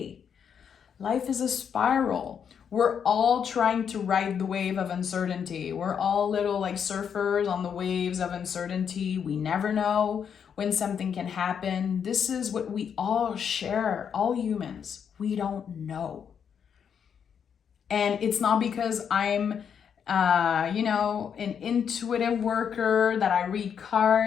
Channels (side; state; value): right; quieter; 7.6 dB